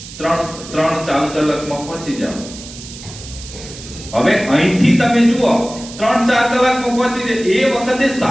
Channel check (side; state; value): right; noise; hiss, 14 dB below the sound